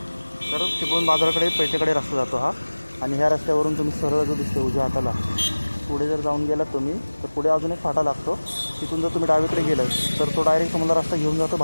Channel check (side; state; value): both; inverted; correlation -1.00